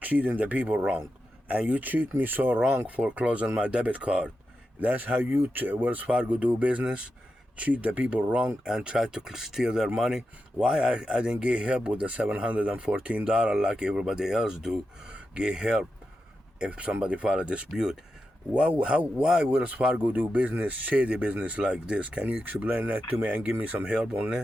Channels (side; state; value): both; normal; correlation 0.89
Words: treating the people wrong. And you treat me so wrong for closing my debit card. That's how you, Wells Fargo, do business? Treat the people wrong and try to steal their money? Why I didn't get help with the $714 like everybody else do? Get help if somebody file a dispute. Why Wells Fargo do business, shady business like this? Can you explain that to me and give me some help on